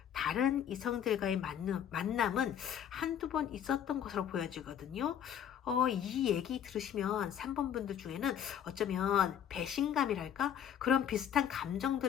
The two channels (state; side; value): quieter; right; 9.2 dB